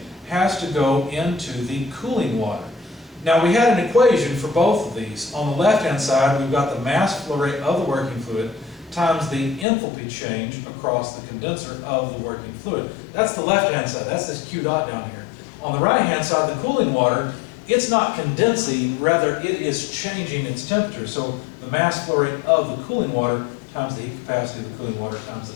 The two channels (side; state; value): right; drops out; at 9.7 s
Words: has to go into the cooling water. Now we had an equation for both of these. On the left-hand side, we've got the mass flow rate of the working fluid times the enthalpy change across the condenser of the working fluid. That's the left-hand side. That's this Q dot down here. On the right-hand side, the cooling water, it's not condensing, rather it is changing its temperature. So the mass flow rate of the cooling water times the heat capacity of the cooling water times